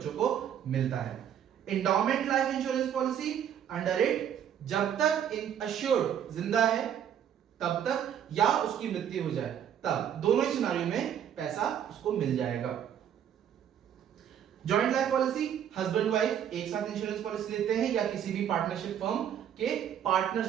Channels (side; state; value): left; quieter; 9.4 dB